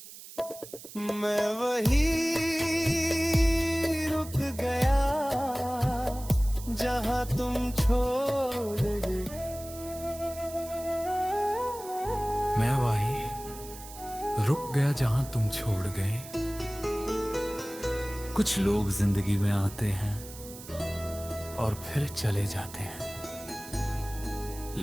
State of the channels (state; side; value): noise; right; hiss, 15 dB below the sound